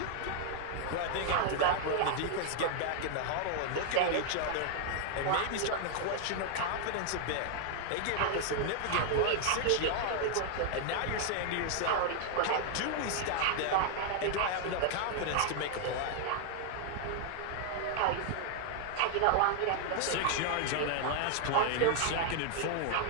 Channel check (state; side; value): different; both; correlation 0.00